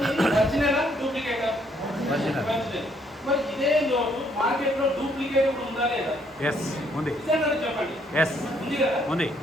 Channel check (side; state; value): both; normal; correlation 0.68